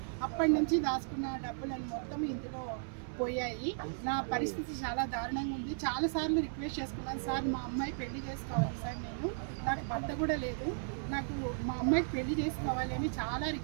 అప్పటి నుంచి దాచుకున్న డబ్బులను మొత్తం ఇందులో పోయాయి నా పరిస్థితి చాలా దారుణంగా ఉంది చాలాసార్లు రిక్వెస్ట్ చేసుకున్నాను సార్ మా అమ్మాయి పెళ్లి చేసుకోవాలి సార్ నాకు భర్త కూడా లేదు నాకు మా అమ్మాయికి పెళ్లి చేసుకోవాలి అని చాలా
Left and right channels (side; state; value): left; silent; 54 dB below the other